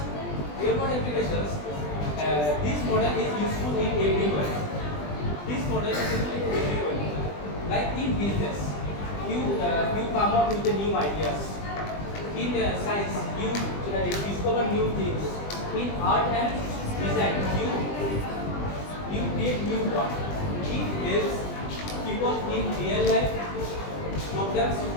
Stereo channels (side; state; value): right; late; 20 ms